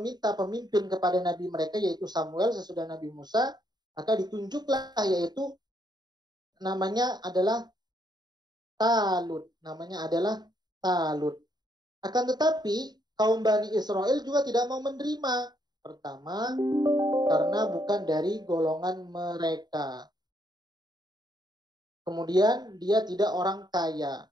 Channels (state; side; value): late; left; 0.20 ms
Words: pemimpin kepada nabi mereka, yaitu Samuel sesudah Nabi Musa. Maka ditunjuklah, yaitu namanya adalah Talut. Akan tetapi kaum Bani Israel juga tidak mau menerima. Pertama, karena bukan dari golongan mereka. Kemudian dia tidak orang kaya.